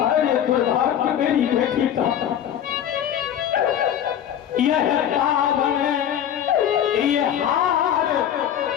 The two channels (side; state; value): right; quieter; 10.0 dB